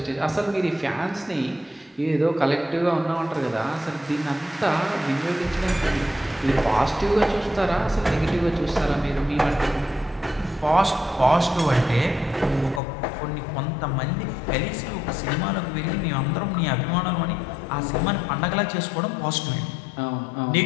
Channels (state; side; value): drops out; right; at 12.8 s